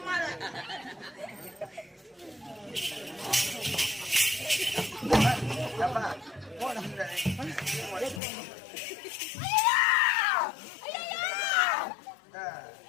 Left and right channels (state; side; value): drops out; right; at 8.2 s